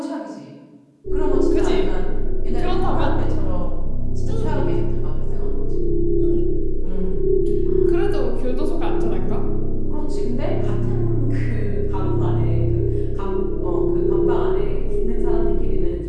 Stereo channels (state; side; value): identical; both; correlation 1.00